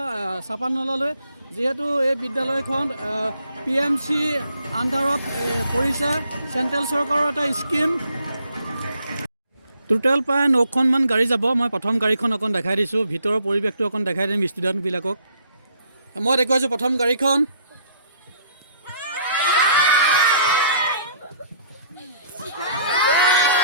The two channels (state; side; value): inverted; both; correlation -0.62